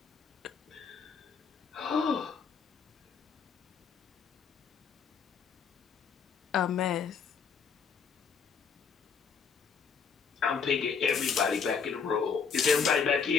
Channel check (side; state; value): right; quieter; 6.0 dB